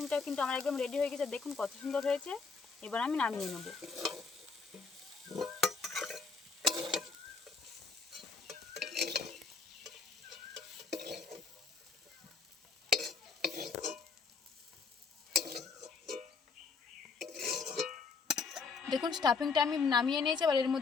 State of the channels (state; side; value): quieter; right; 4.9 dB